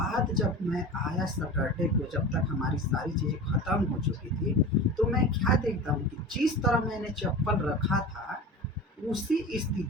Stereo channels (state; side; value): normal; both; correlation 0.32